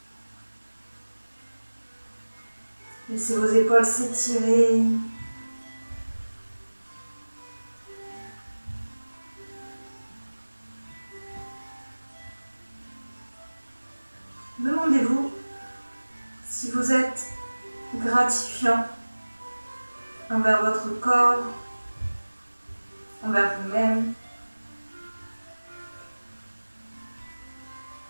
Laissez vos épaules s'étirer. Demandez-vous si vous êtes gratifiant envers votre corps, envers vous-même.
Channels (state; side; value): inverted; both; correlation -1.00